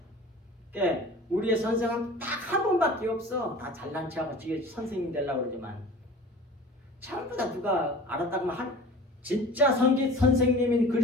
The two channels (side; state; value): both; normal; correlation 0.41